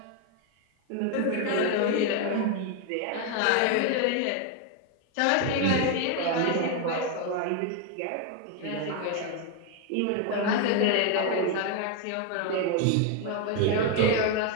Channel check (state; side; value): different; both; correlation 0.01